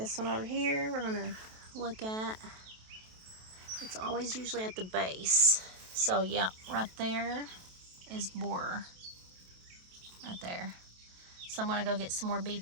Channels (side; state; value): left; late; 27 ms